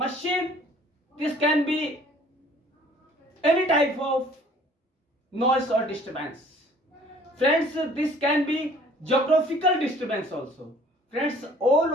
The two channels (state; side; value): normal; both; correlation 0.54